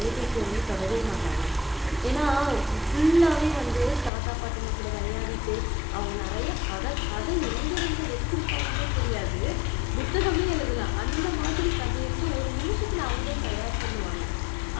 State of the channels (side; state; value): right; drops out; at 4.1 s